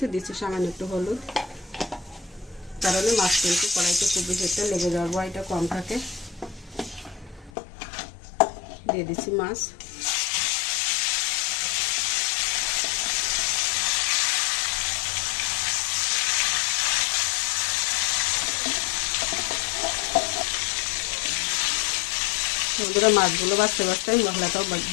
দিচ্ছি সামান্য একটু হলুদ, কারণে মাছ কিন্তু কড়াইতে খুব বেশি একটা লেগে যাওয়ার ভয়টা কম থাকে। দিয়ে দিচ্ছি মাছ। বন্ধুরা মাছগুলো বাছতে বাছতে আমি মশলাটাও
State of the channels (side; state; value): right; drops out; at 7.5 s